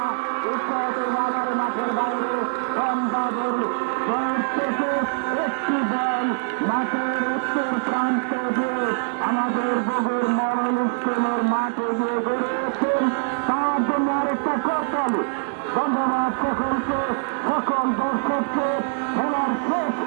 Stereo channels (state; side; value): silent; left; 63 dB below the other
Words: বাজার মাঠের বাইরে থেকে একটি দল মাঠের উত্তর প্রান্ত দিয়ে আমাদের বগুড় মডেল স্কুলের মাঠে গিয়ে গড়েছেন। তার জন্য আরেকটা করতালি। ধন্যবাদ সকলকে, সকল দর্শককে। খেলার শেষ